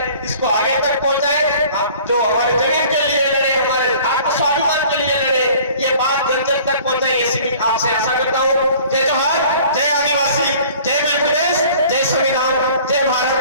इसको आगे तक पहुंचाए। आप जो हमारे जमीन के लिए लड़े, हमारे आत्मस्वाभिमान के लिए लड़े, ये बात जन जन तक पहुंचाए, ऐसी भी आपसे आशा करता हूँ। जय जोहार, जय आदिवासी, जय मध्य प्रदेश, जय संविधान, जय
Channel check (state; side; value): inverted; both; correlation -0.49